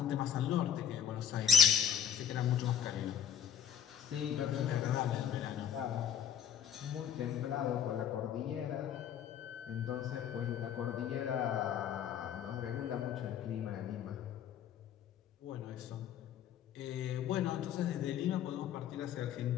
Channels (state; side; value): quieter; right; 9.0 dB